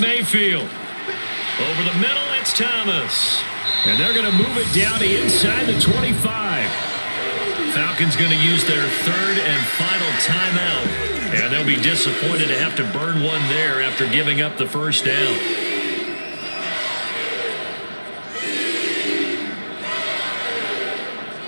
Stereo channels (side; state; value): both; inverted; correlation -1.00